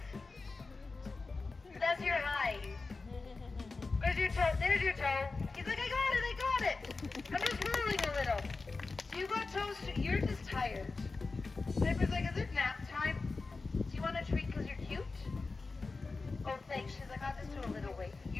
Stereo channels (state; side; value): quieter; right; 3.9 dB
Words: That's your hi. Where's your toe? There's your toe. He's like, I got it. I'm just rolling a little. You got toes too. You're just tired. Piper's like, is it nap time? Do you want a treat because you're cute? Oh, thanks. She's like, I'll just do a little wave.